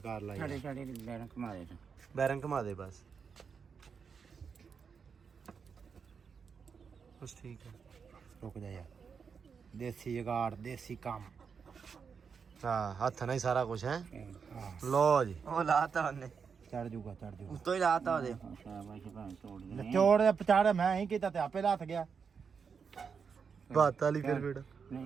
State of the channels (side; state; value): left; quieter; 6.1 dB